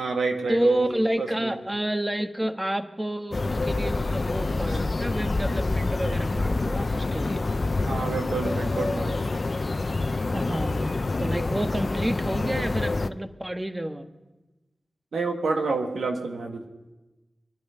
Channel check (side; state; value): both; normal; correlation 0.94